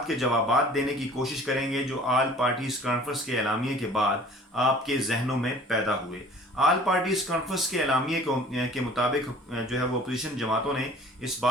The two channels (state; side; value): normal; both; correlation 0.48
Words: के जवाबात देने की कोशिश करेंगे जो आल पार्टीज कॉन्फ्रेंस के एलामिये के बाद आपके जहनों में पैदा हुए। आल पार्टीज कॉन्फ्रेंस के एलामिये के मुताबिक जो है वो अपोजिशन जमातों ने इस